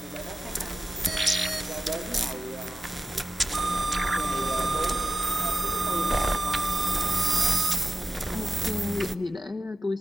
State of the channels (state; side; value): normal; both; correlation 0.90